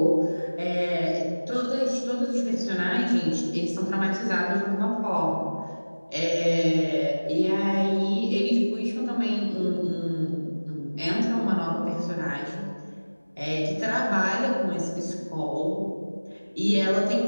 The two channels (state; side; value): inverted; both; correlation -1.00